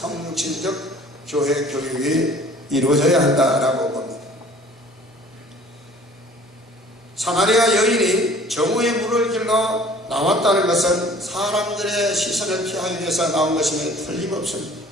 교회 교육이 이루어져야 한다라고 봅니다. 사마리아 여인이 정오의 물을 길러 나왔다는 것은 사람들의 시선을 피하기 위해서 나온 것임에 틀림없습니다.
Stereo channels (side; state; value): both; normal; correlation 0.51